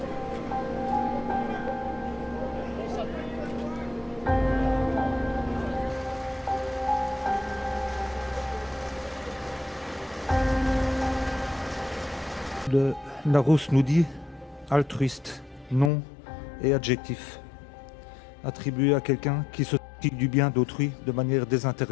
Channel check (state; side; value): drops out; right; at 15.9 s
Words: Le Larousse nous dit altruiste, nom et adjectif, attribué à quelqu'un qui se soucie du bien d'autrui de manière